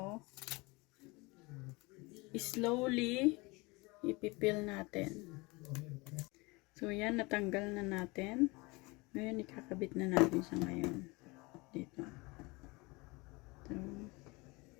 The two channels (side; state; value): right; quieter; 25.3 dB